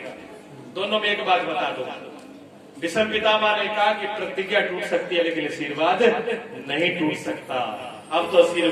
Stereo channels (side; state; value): both; identical; correlation 1.00